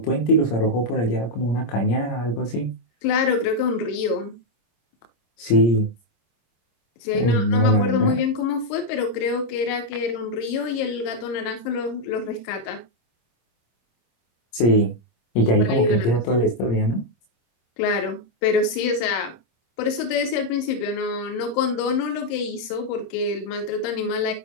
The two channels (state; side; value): late; right; 26 ms